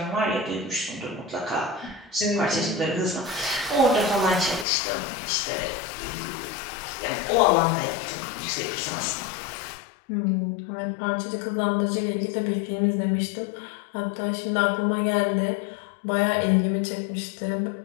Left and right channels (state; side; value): drops out; right; at 4.7 s